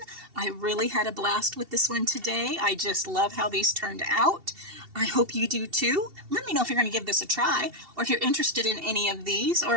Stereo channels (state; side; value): late; left; 2.7 ms